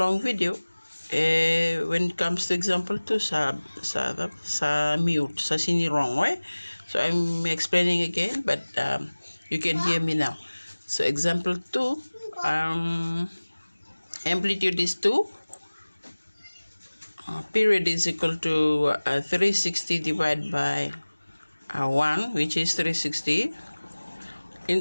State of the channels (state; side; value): inverted; both; correlation -1.00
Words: video, when it comes to example 2, sa mute, sa sini wrong, right? So I'm explaining again, but you can hear me now. So example 2, amplitude is 2. Period is equal to 360 divided by 1, which is 360.